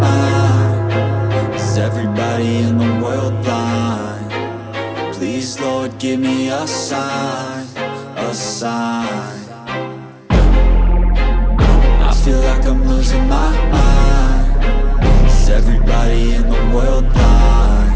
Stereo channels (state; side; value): identical; both; correlation 1.00